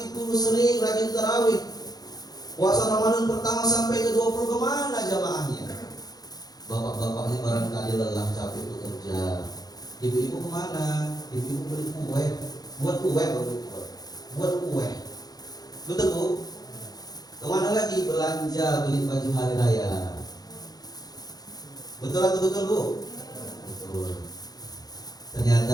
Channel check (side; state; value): right; late; 0.19 ms